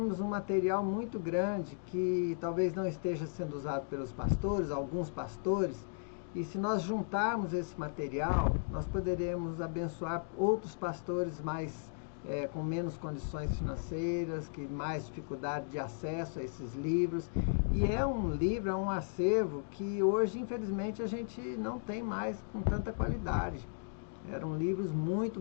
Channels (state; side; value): silent; right; digital silence